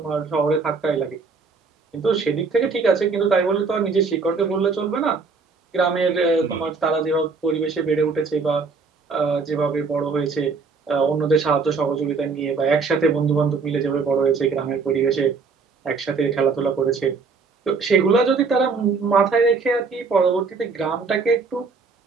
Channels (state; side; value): quieter; left; 4.7 dB